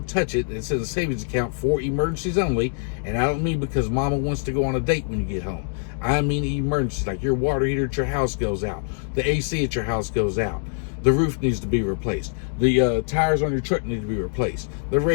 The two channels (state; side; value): silent; right; 60 dB below the other